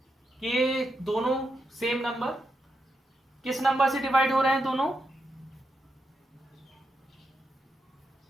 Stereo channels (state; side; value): normal; both; correlation 0.84